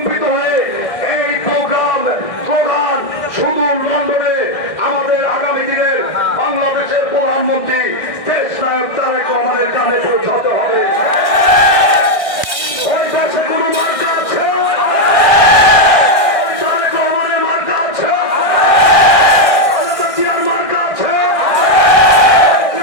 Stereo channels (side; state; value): right; late; 1.6 ms